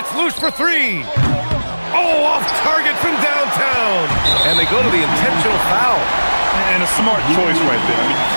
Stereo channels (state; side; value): inverted; both; correlation -1.00